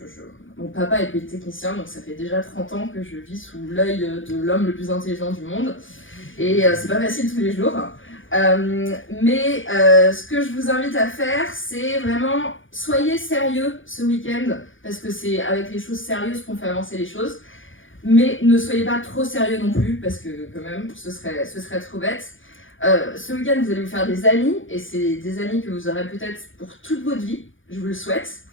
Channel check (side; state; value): right; late; 0.57 ms